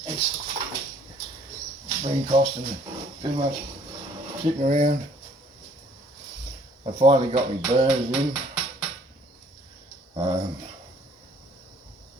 It's been costing too much sitting around. I finally got my burners in.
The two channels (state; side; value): normal; both; correlation 0.60